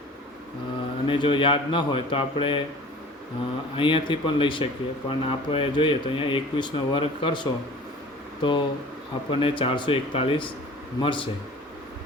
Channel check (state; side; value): normal; both; correlation 0.44